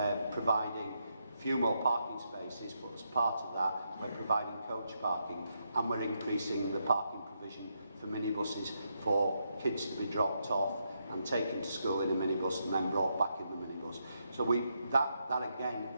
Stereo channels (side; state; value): both; inverted; correlation -0.81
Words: providing a few more parking spaces, but as part of that, we're providing coach parking, and we're increasing the parking provision for minibuses for kids to be dropped off and taken to school in a minibus and then brought back in the minibus. So that again